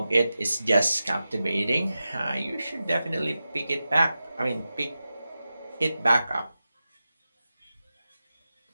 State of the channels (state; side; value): inverted; both; correlation -0.93